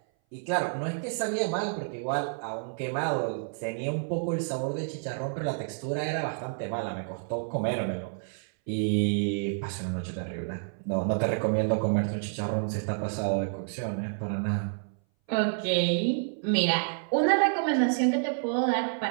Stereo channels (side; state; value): left; silent; 58 dB below the other